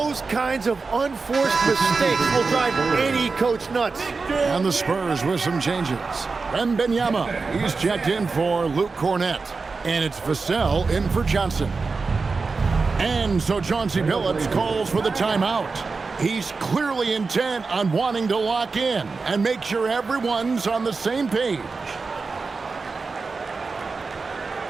kinds of unforced mistakes will drive any coach nuts. And the Spurs with some changes. Wembanyama, he's checked in for Luke Cornet. And it's Vassell in for Johnson. And so Chauncey Billups calls for the timeout. He's clearly intent on wanting to lock in and make sure everyone's on the same page.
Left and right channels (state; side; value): quieter; left; 4.3 dB